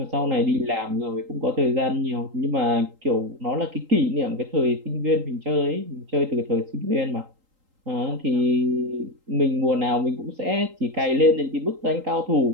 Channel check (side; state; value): left; late; 3.8 ms